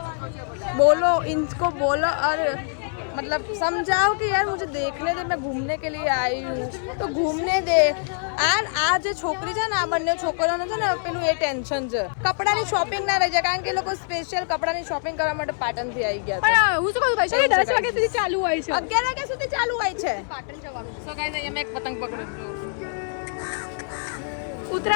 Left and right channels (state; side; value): silent; right; 62 dB below the other